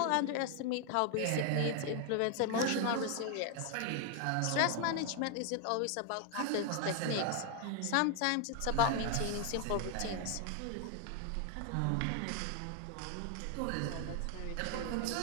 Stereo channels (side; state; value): both; different; correlation 0.00